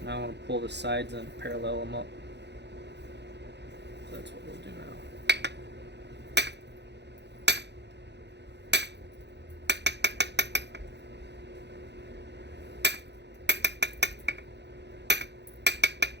Now I want to pull the sides and parallel them up. So that's what we'll do now.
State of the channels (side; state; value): left; late; 0.50 ms